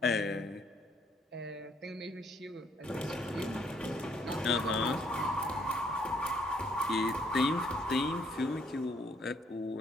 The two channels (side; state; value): both; normal; correlation 0.67